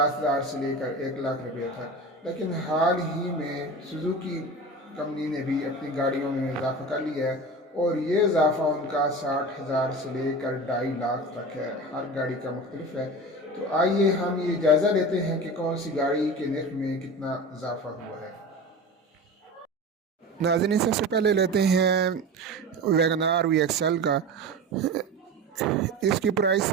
से लेकर 1 लाख रुपये था। लेकिन हाल ही में सुजुकी कंपनी ने भी अपनी गाड़ियों में इजाफ़ा कर लिया है और ये इजाफ़ा उनका 60,000 से लेकर 2.5 लाख तक है। हर गाड़ी का मुख्तलिफ है। तो आइए हम ये जायज़ा लेते हैं कि कौन सी गाड़ी के निर्ख में कितना इजाफ़ा हुआ है। नाज़रीन, सबसे पहले लेते हैं वैगनार VXL का। इसकी प्राइस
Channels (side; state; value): both; normal; correlation 0.30